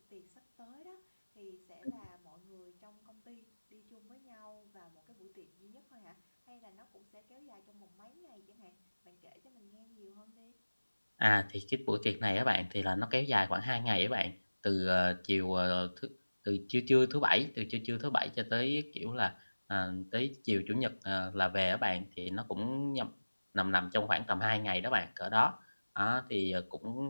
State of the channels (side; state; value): both; inverted; correlation -1.00